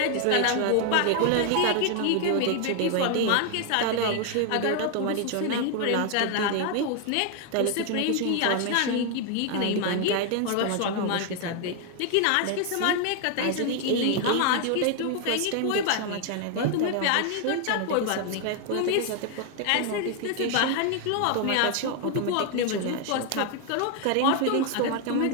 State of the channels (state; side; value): different; both; correlation 0.00